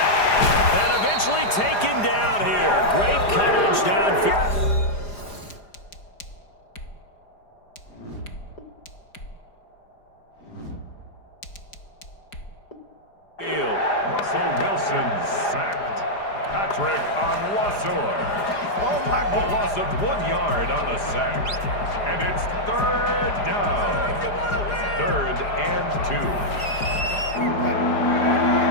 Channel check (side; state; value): right; late; 4.9 ms